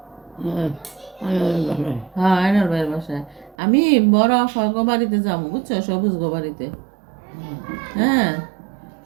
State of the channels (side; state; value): left; drops out; at 3.6 s